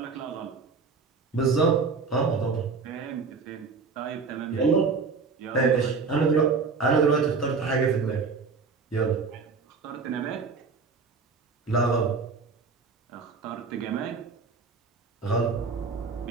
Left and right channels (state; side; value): quieter; left; 4.8 dB